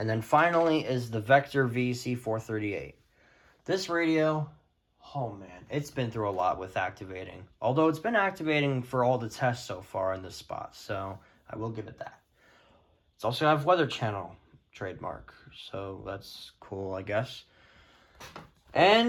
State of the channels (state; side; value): identical; both; correlation 1.00